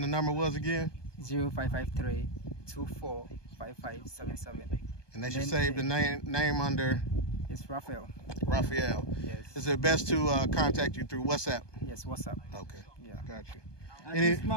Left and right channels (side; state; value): right; late; 1.2 ms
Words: the number was again? 0553-245577. And they should save the name under? It's Raphael. Raphael. Yes. Is it best to contact you through WhatsApp? Yes, WhatsApp. Okay. Yeah. Got you.